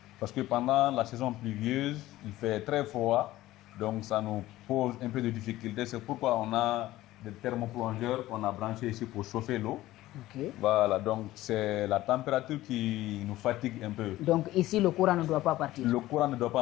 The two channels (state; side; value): quieter; right; 16.1 dB